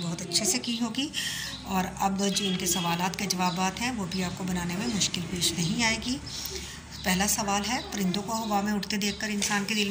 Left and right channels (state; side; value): identical; both; correlation 1.00